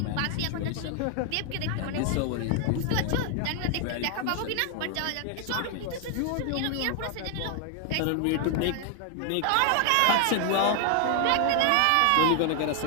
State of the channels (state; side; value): different; both; correlation 0.00